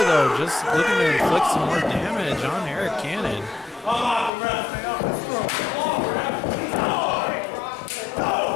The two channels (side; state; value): right; drops out; at 4.3 s